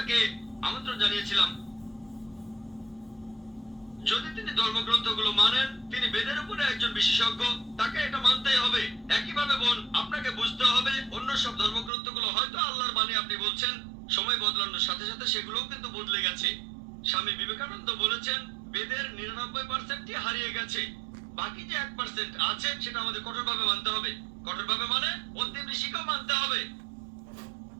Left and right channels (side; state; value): left; drops out; at 11.9 s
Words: আমন্ত্রণ জানিয়েছিলাম, যদি তিনি ধর্মগ্রন্থগুলো মানেন, তিনি বেদের উপরে একজন বিশেষজ্ঞ, তাকে এটা মানতেই হবে। একইভাবে বোন, আপনাকে বুঝতে হবে অন্য সব ধর্মগ্রন্থগুলো হয়তো আল্লাহর বাণী আপনি বলছেন, সময় বদলানোর সাথে সাথে সেগুলোও কিন্তু বদলে গেছে। স্বামী বিবেকানন্দ বলেছেন বেদের 99%ই হারিয়ে গেছে, বাকি যে 1% আছে সেটা আমাদের কঠোরভাবে মানতে হবে। কঠোরভাবে মানে অন্তিম ঋষিকেও মানতে হবে।